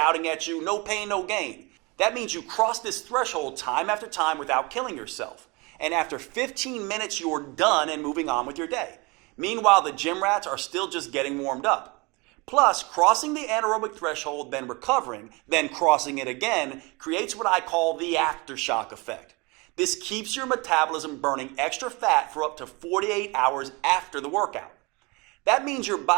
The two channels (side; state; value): left; quieter; 26.8 dB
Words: at you, no pain, no gain. That means you cross this threshold time after time without killing yourself. And after 15 minutes, you're done and moving on with your day. Meanwhile, the gym rats are still just getting warmed up. Plus, crossing the anaerobic threshold, then recovering, then crossing it again, creates what I call the aftershock effect. This keeps your metabolism burning extra fat for up to 48 hours after the workout. That means your